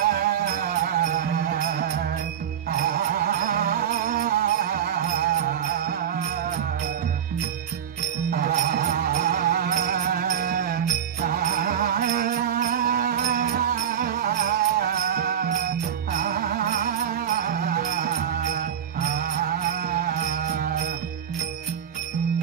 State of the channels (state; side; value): quieter; left; 9.0 dB